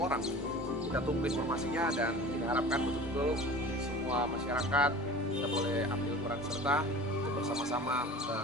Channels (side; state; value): both; normal; correlation 0.39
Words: Kita tunggu informasinya dan kita harapkan betul-betul semua masyarakat kita boleh ambil peran serta untuk bersama-sama